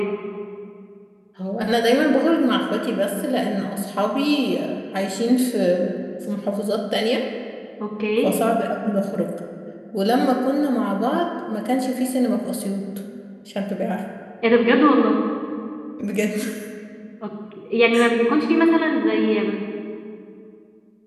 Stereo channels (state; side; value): identical; both; correlation 1.00